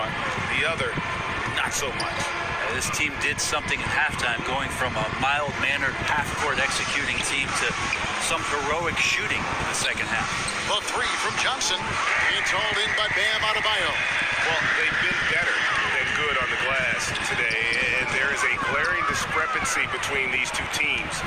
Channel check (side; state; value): both; identical; correlation 1.00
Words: the other not so much. This team did something at halftime, going from a mild-mannered half-court executing team to some heroic shooting in the second half. The three from Johnson. It's hauled in by Bam Adebayo. Well, they've been better than good on the glass today, and there is a glaring discrepancy between these two teams